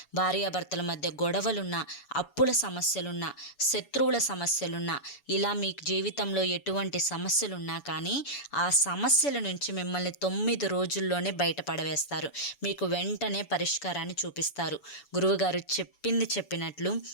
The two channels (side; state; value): right; late; 7.0 ms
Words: భార్యాభర్తల మధ్య గొడవలున్నా, అప్పుల సమస్యలున్నా, శత్రువుల సమస్యలున్నా, ఇలా మీకు జీవితంలో ఎటువంటి సమస్యలున్నా కానీ ఆ సమస్యల నుంచి మిమ్మల్ని 9 రోజుల్లోనే బయటపడవేస్తారు. మీకు వెంటనే పరిష్కారాన్ని చూపిస్తారు. గురువుగారు చెప్పింది చెప్పినట్లు